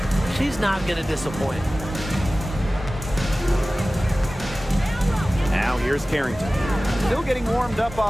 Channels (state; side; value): normal; both; correlation 0.97